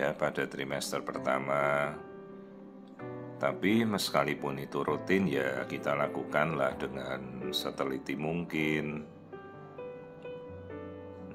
pada trimester pertama. Tapi meskipun itu rutin ya kita lakukanlah dengan seteliti mungkin.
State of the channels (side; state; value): both; identical; correlation 1.00